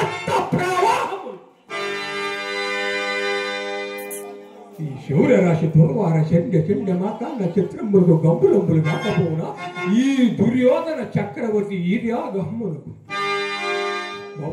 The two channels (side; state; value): both; identical; correlation 1.00